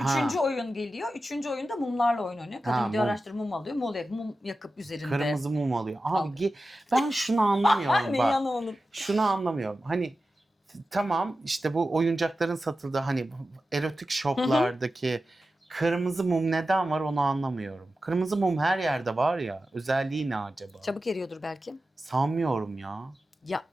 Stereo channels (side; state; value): both; normal; correlation 0.93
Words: Ha. 3. oyun geliyor. 3. oyunda mumlarla oyun oynuyor. Kadın Ha, gidiyor mum. araştırıp mum alıyor. Mum yakıp üzerinde. Kırmızı mum alıyor. Abi Alıyor. ben şunu anlamıyorum Ne bak. yanı Şunu anlamıyorum. Hani tamam işte bu oyuncakların satıldığı hani erotik shoplardaki kırmızı mum neden var onu anlamıyorum. Kırmızı mum her yerde var ya. Özelliği ne acaba? Çabuk eriyordur belki. Sanmıyorum ya. Ya